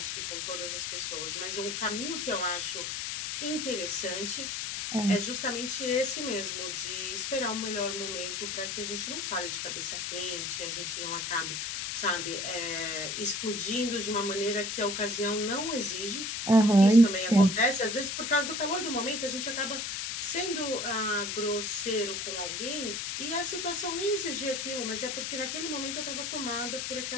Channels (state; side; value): noise; left; hiss, 3 dB below the sound